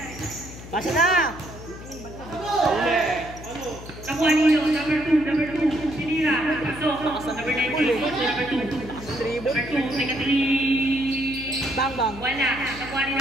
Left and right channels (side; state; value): left; noise; hum, 14 dB below the sound